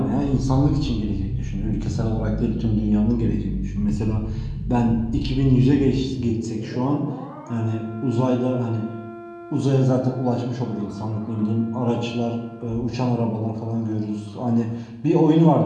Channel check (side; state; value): both; identical; correlation 1.00